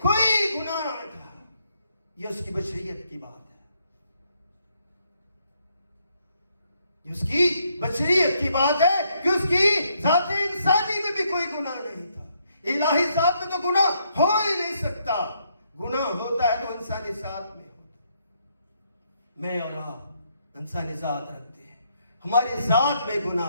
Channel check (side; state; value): both; inverted; correlation -0.74